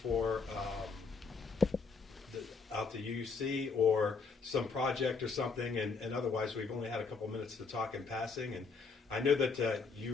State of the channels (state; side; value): quieter; right; 4.8 dB